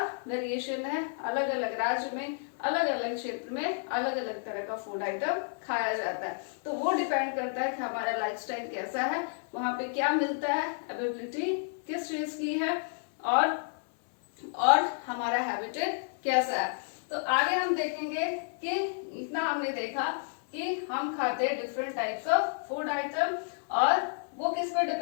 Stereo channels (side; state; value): right; silent; 57 dB below the other